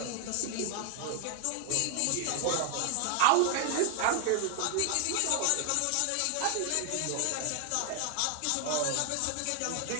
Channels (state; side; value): different; both; correlation 0.00